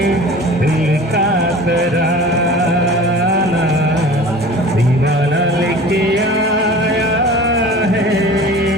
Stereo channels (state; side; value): normal; both; correlation 0.41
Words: दिल का तराना, दीवाना लेके आया है